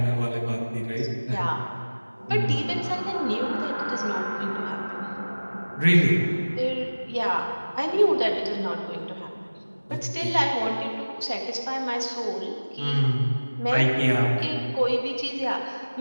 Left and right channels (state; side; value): inverted; both; correlation -1.00